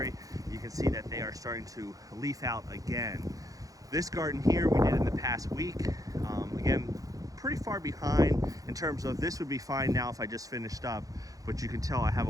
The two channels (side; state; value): left; late; 0.17 ms